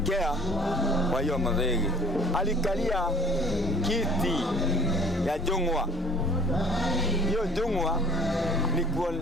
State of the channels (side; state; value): both; normal; correlation 0.51